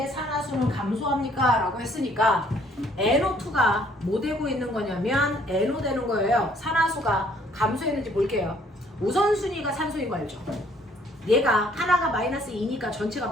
산화수는 감소합니까? 라고 했으니까 NO2가 뭐 되고 있는 거냐면 NO 되는 거예요. 산화수가 감소했는지 볼게요. 우선순위가 산소인 거 알죠? 얘가 하나가 마이너스 2니까 전체가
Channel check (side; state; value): both; normal; correlation 0.62